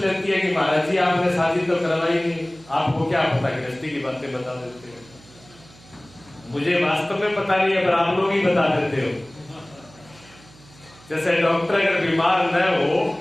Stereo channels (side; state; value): right; noise; hum, 24 dB below the sound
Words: है कि महाराज जी आपने शादी तो करवाई नहीं, आपको क्या पता, गृहस्थी की बातें बता देते हो। मुझे वास्तव में पता नहीं है, पर आप लोग ही बता देते हो। जैसे डॉक्टर अगर बीमार न हो